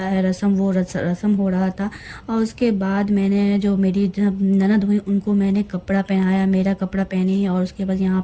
है रस्म, वो रस्म हो रहा था। और उसके बाद मैंने जो मेरी ननद हुई उनको मैंने कपड़ा पहनाया, मेरा कपड़ा पहनी, और उसके बाद यहाँ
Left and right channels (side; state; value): both; identical; correlation 1.00